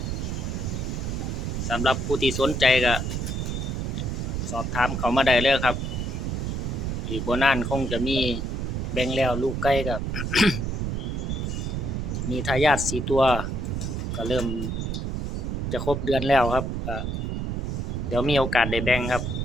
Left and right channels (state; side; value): noise; right; rumble, 2 dB below the sound